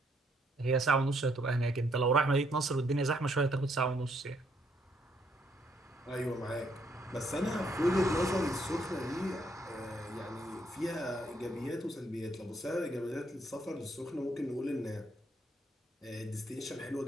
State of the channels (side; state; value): both; normal; correlation 0.71